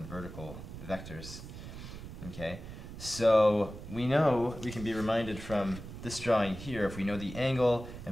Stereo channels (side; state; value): right; noise; rumble, 11 dB below the sound